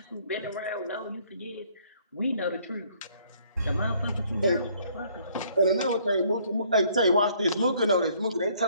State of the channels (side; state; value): both; inverted; correlation -0.63